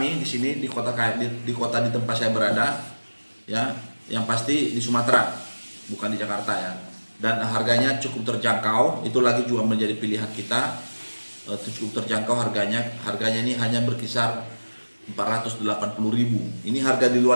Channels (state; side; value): inverted; both; correlation -1.00